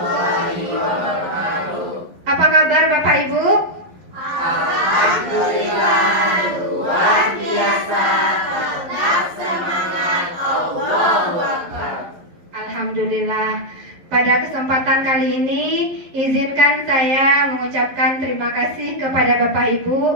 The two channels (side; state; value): left; late; 11 ms